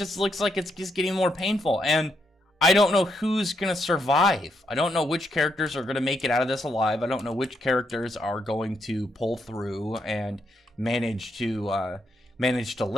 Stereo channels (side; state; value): both; normal; correlation 0.78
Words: looks like it's just getting more painful. And I don't know who's going to survive. I don't know which characters are going to make it out of this alive. I don't know which characters are going to pull through and manage to